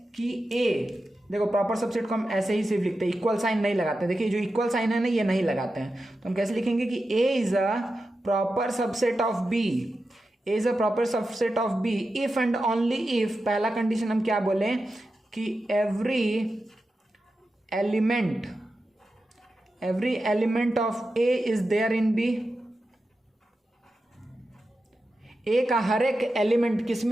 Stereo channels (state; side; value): normal; both; correlation 0.91